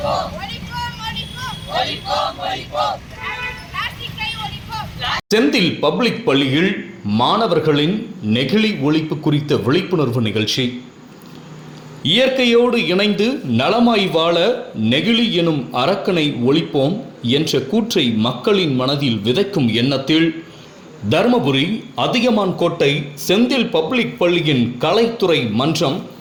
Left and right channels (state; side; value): identical; both; correlation 1.00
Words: ஒழிப்போம். பிளாஸ்டிக்கை ஒழிப்போம். செந்தில் பப்ளிக் பள்ளியில் மாணவர்களின் நெகிழி ஒழிப்பு குறித்த விழிப்புணர்வு நிகழ்ச்சி. இயற்கையோடு இணைந்து நலமாய் வாழ நெகிழி எனும் அரக்கனை ஒழிப்போம் என்ற கூற்றை மக்களின் மனதில் விதைக்கும் எண்ணத்தில் தர்மபுரி அதியமான்கோட்டை செந்தில் பப்ளிக் பள்ளியின் கலைத்துறை மன்றம்